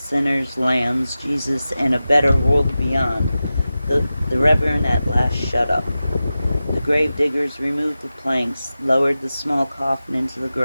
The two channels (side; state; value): both; inverted; correlation -0.94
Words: lambs, Jesus, and a better world beyond, the Reverend at last shut up. The grave diggers removed the planks, lowered the small coffin into the